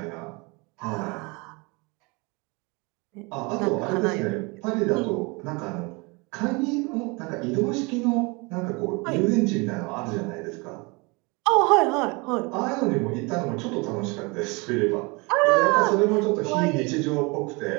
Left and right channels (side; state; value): left; quieter; 27.8 dB